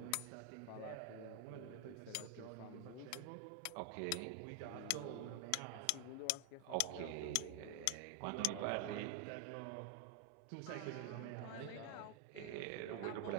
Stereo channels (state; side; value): different; both; correlation 0.00